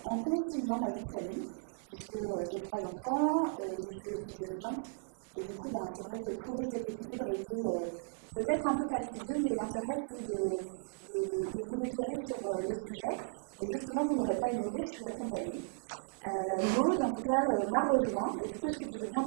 en conciliant ma vie de famille, puisque j'ai 3 enfants, je suis aussi dirigeante. Et du coup, c'est vrai que trouver cet équilibre a été peut-être un peu fastidieux, mais l'intérêt, c'est de vous éclairer sur le sujet. Et justement, vous ne l'aurez pas ignoré, je suis accompagnée. Maud, en tout cas, m'a rejoint. Et du coup, est-ce que tu veux bien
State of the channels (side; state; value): left; silent; 54 dB below the other